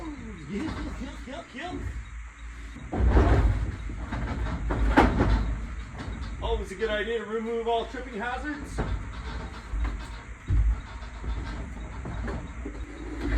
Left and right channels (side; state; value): both; identical; correlation 1.00